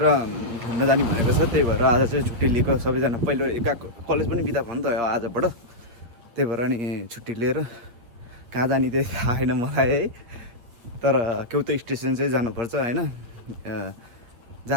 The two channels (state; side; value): late; left; 8.5 ms